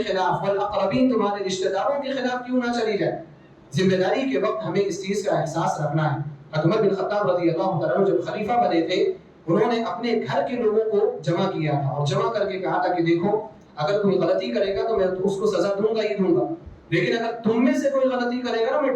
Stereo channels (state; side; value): identical; both; correlation 1.00